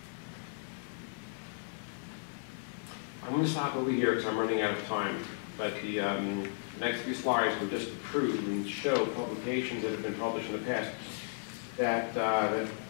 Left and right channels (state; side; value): silent; right; 55 dB below the other